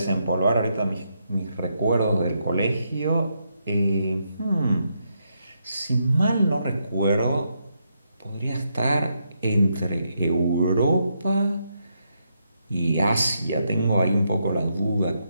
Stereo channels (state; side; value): inverted; both; correlation -0.80